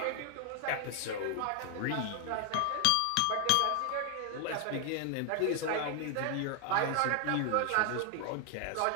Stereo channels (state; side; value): different; both; correlation 0.00